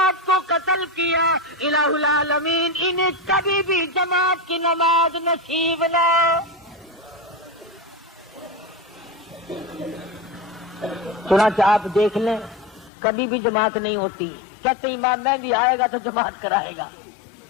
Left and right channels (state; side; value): drops out; right; at 12.9 s